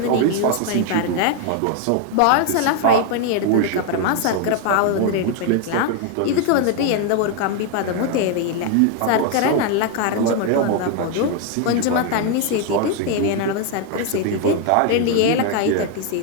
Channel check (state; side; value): different; both; correlation 0.00